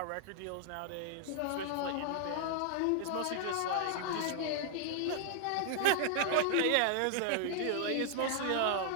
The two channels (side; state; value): both; different; correlation 0.00